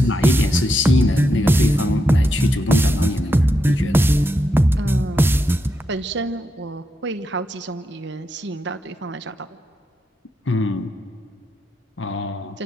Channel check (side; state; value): both; normal; correlation 0.84